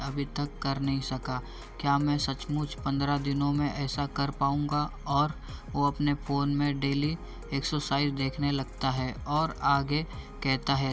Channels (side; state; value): both; identical; correlation 1.00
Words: तक कर नहीं सका। क्या मैं सचमुच 15 दिनों में ऐसा कर पाऊँगा? और वो अपने फ़ोन में डेली एक्सरसाइज देखने लगता है और आगे कहता